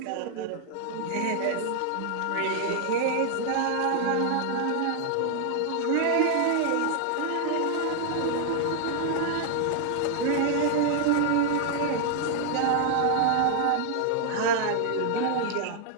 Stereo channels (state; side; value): different; both; correlation 0.00